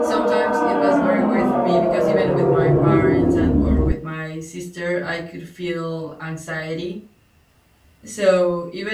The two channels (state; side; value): identical; both; correlation 1.00